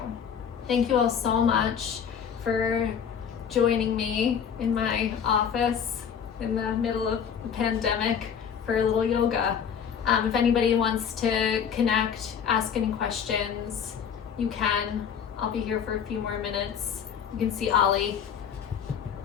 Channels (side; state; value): right; quieter; 7.6 dB